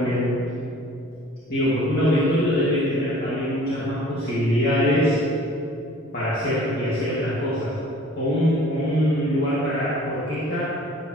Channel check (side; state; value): both; normal; correlation 0.49